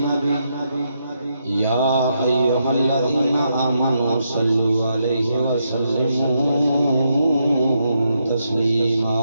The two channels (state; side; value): inverted; both; correlation -0.80